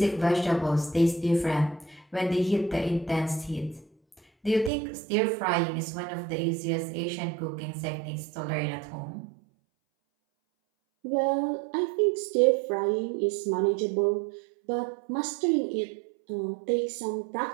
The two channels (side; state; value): left; drops out; at 4.7 s